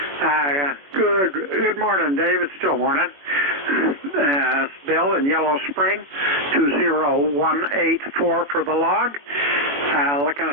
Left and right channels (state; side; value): late; left; 21 ms